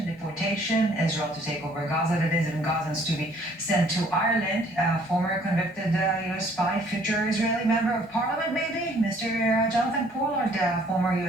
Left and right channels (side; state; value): both; normal; correlation 0.60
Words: deportation, Israel to take over Gaza, that is, and Gazans to be sent to Ireland. Former convicted U.S. spy, future Israeli member of parliament, maybe, Mr. Jonathan Pollard, former